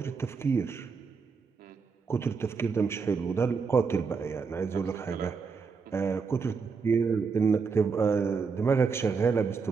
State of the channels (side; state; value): left; quieter; 5.2 dB